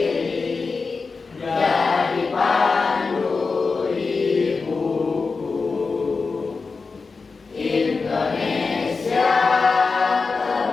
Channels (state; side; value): quieter; right; 4.5 dB